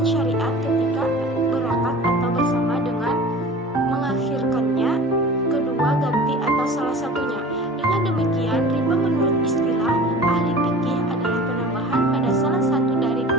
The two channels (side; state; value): both; normal; correlation 0.40